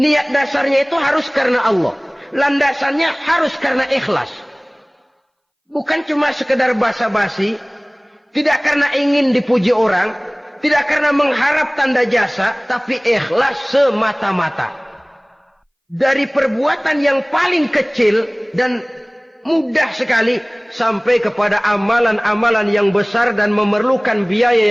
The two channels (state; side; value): identical; both; correlation 1.00